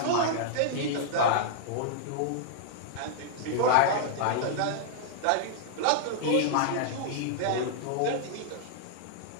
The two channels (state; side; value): different; both; correlation -0.01